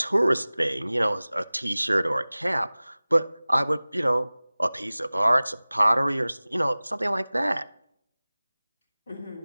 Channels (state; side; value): inverted; both; correlation -0.99